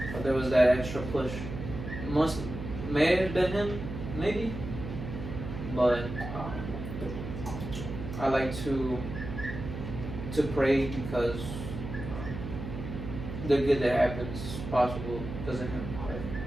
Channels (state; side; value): noise; right; hum, 8 dB below the sound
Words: But there was that extra push. May have been him, maybe. But I like to pray because the good that happens is possible because of him. Right?